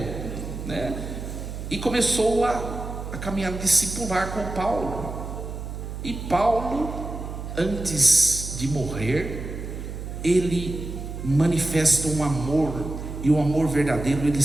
né? E começou a caminhar discipular com Paulo. E Paulo, antes de morrer, ele manifesta um amor, e o amor verdadeiro, ele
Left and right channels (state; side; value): noise; right; hum, 8 dB below the sound